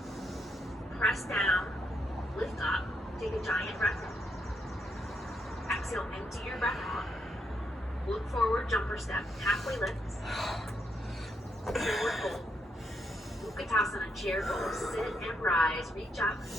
Press down, lift up, take a giant breath in. Exhale, empty your breath out. Look forward, jump or step. Halfway lift. Forward fold. Utkatasana, chair pose. Sit and rise. Reach up.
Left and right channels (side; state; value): both; normal; correlation 0.78